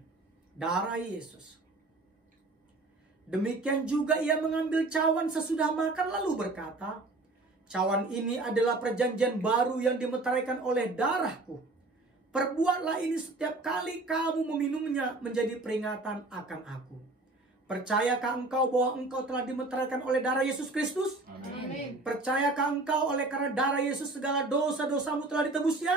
Darah Yesus. Demikian juga ia mengambil cawan sesudah makan lalu berkata, cawan ini adalah perjanjian baru yang dimeteraikan oleh darahku. Perbuatlah ini setiap kali kamu meminumnya menjadi peringatan akan aku. Percayakah engkau bahwa engkau telah dimeteraikan oleh darah Yesus Kristus? Amin. Percayakah engkau oleh karena darah Yesus segala dosa-dosamu telah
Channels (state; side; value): quieter; left; 3.1 dB